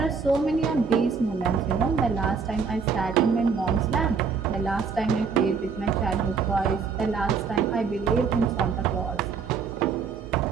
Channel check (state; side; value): quieter; left; 5.6 dB